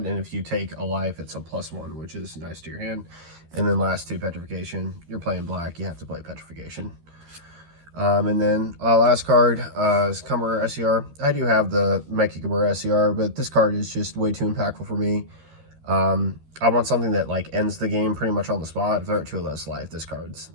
and if you take a life, it's a +1, which is nice to your hand. And then last 2, Petrification. You're playing black, you have to play Petrification. And then last card is Kamura SCR. I do have the Mechikabura SCR, but this card is just way too impactful for me. I want something that like ends the game pretty much on the spot. If they're at 2 less life, this card's,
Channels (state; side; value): late; left; 13 ms